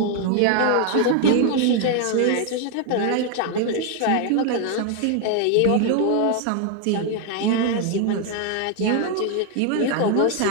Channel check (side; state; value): both; different; correlation 0.01